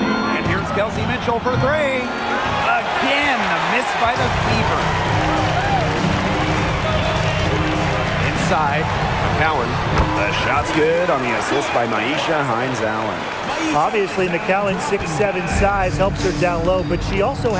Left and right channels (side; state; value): both; identical; correlation 1.00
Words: here's Kelsey Mitchell for 3. Again, a miss by the Fever. Inside, McCowan. The shot's good on the assist by Maisha Hines Allen. Obviously, McCowan's 6'7" size helps her down low, but she also